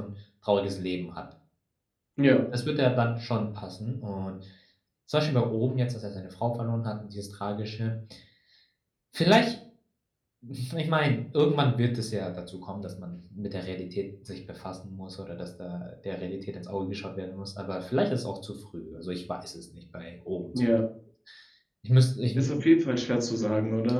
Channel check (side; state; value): both; identical; correlation 1.00